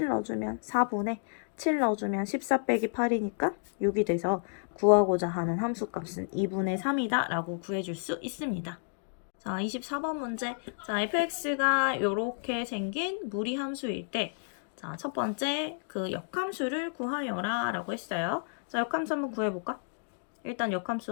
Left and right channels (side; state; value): right; silent; digital silence